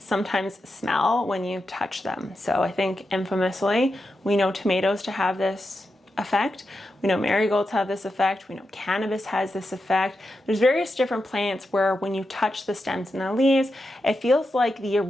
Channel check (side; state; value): both; normal; correlation 0.88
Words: smell when you touch them? So I think infamously, we know tomatoes to have this effect. We know marigolds have this effect. We know cannabis has this effect. There's various different plants where when you touch the stems and the leaves, it feels like the